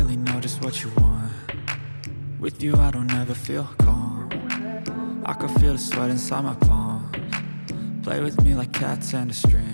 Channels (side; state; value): both; inverted; correlation -1.00